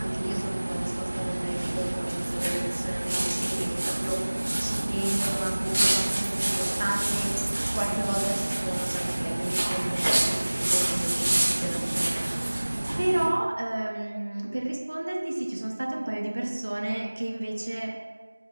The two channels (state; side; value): inverted; both; correlation -1.00